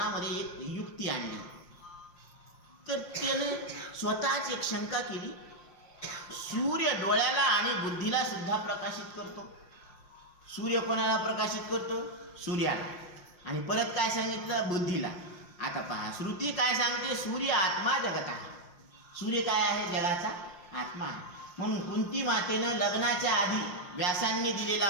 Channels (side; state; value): right; late; 5.7 ms